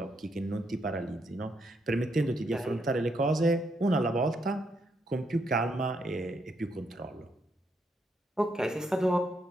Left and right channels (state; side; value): normal; both; correlation 0.77